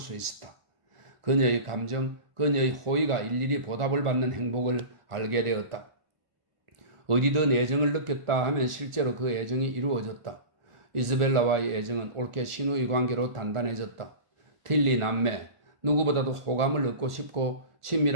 있었다. 그녀의 감정, 그녀의 호의가 일일이 보답을 받는 행복을 알게 되었다. 어디든 애정을 느꼈다 하면 실제로 그 애정이 이루어졌다. 이즈벨라와의 애정은 옳게 신우의 관계로 단단해졌다. 틸리 남매, 누구보다도 호감을 얻고 싶고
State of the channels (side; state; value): left; late; 1.4 ms